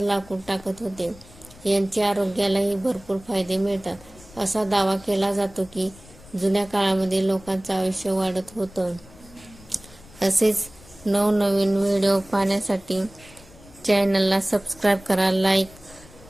लाकूड टाकत होते. यांचे आरोग्यालाही भरपूर फायदे मिळतात. असा दावा केला जातो की जुन्या काळामध्ये लोकांचं आयुष्य वाढत होतं. असेच नवनवीन व्हिडिओ पाहण्यासाठी चॅनलला सबस्क्राईब करा, लाईक,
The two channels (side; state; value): left; noise; rumble, 22 dB below the sound